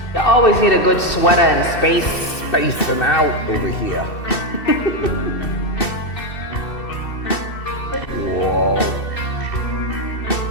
You always need a good sweater and space. Spacing out over here. Whoa.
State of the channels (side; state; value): right; late; 2.7 ms